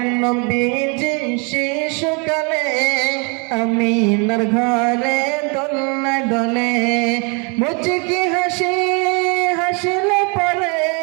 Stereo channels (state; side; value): quieter; left; 33.4 dB